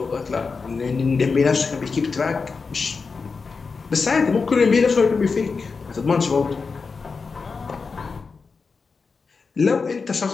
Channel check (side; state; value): right; quieter; 4.8 dB